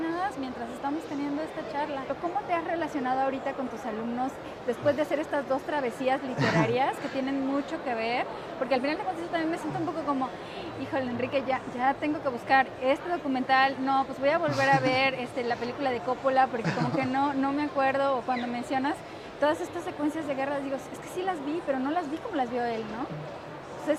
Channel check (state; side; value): identical; both; correlation 1.00